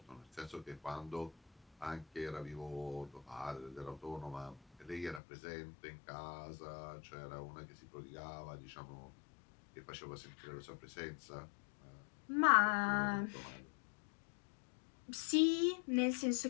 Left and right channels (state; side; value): drops out; right; at 5.2 s